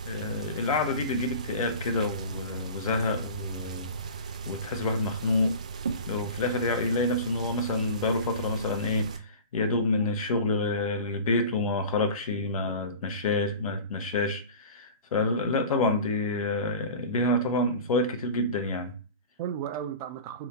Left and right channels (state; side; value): inverted; both; correlation -0.36